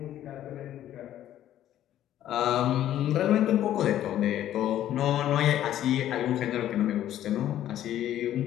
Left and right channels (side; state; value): right; quieter; 12.1 dB